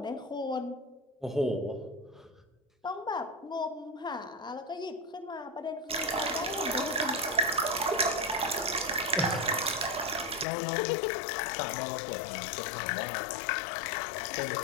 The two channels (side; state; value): right; drops out; at 10.5 s